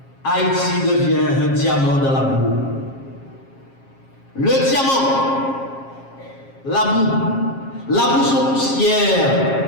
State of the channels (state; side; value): late; right; 7.4 ms